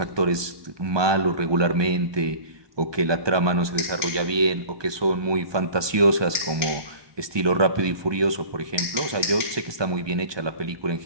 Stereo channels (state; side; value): late; left; 1.2 ms